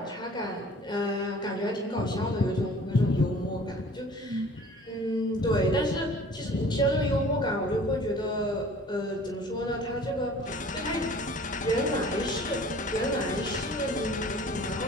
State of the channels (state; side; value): normal; both; correlation 0.48